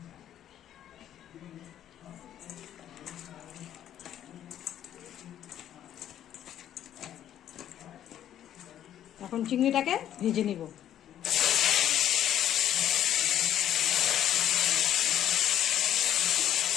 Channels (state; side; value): quieter; right; 11.0 dB